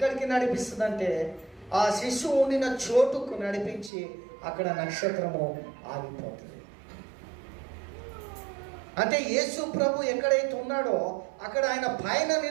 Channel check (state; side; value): drops out; left; at 3.9 s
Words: నడిపిస్తుందంటే ఆ శిశువు ఉండిన చోటుకు నడిపించి అక్కడ నక్షత్రము ఆగిపోతుంది. అంటే యేసు ప్రభు ఎక్కడైతే ఉన్నాడో అక్కడ ఆయన పైన